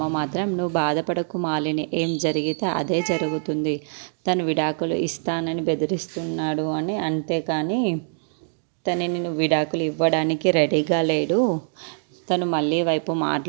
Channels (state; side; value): silent; left; digital silence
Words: మాత్రం, నువ్వు బాధపడకు మాలిని, ఏం జరిగితే అదే జరుగుతుంది, తను విడాకులు ఇస్తానని బెదిరిస్తున్నాడు అని, అంతేకాని తనని నువ్వు విడాకులు ఇవ్వడానికి రెడీగా లేడు, తను మళ్ళీ వైపు